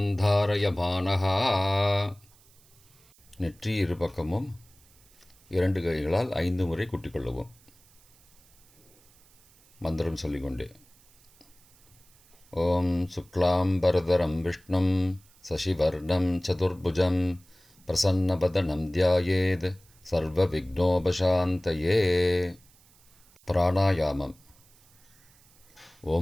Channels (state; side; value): noise; right; hiss, 29 dB below the sound